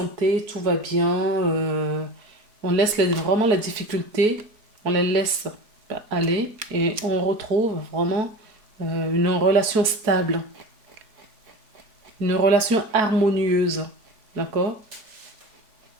tout va bien. On laisse vraiment les difficultés, on les laisse aller et on retrouve vraiment une relation stable. Une relation harmonieuse. D'accord?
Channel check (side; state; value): left; late; 4.6 ms